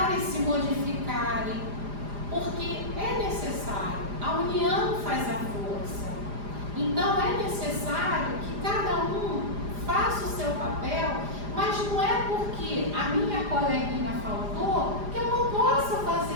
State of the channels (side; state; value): left; late; 4.9 ms